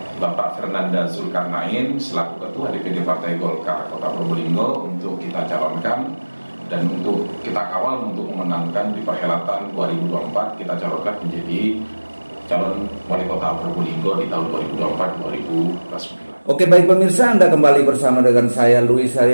Bapak Fernanda Zulkarnain selaku Ketua DPD Partai Golkar Kota Probolinggo untuk kita calonkan dan untuk kita kawal untuk memenangkan di perhelatan 2024 kita calonkan menjadi calon wali kota Probolinggo di tahun 2024-2029. Oke, baik pemirsa, Anda kembali bersama dengan saya Luis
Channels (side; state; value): both; inverted; correlation -1.00